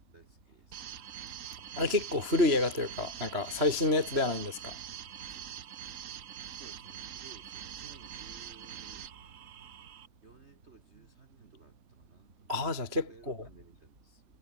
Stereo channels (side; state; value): left; late; 3.1 ms